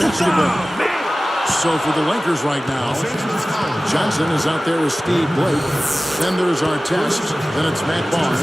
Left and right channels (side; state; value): both; normal; correlation 0.97